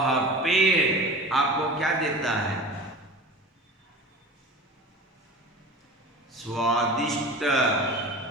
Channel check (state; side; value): normal; both; correlation 0.36